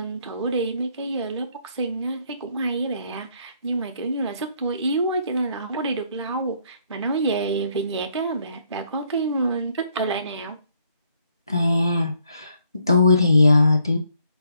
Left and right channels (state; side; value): inverted; both; correlation -0.69